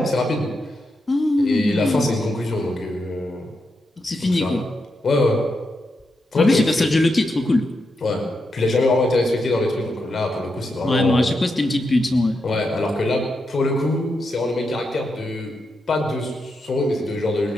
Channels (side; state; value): both; normal; correlation 0.85